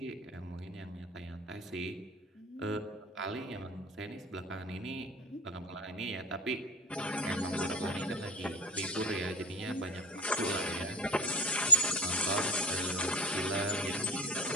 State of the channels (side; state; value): both; normal; correlation 0.31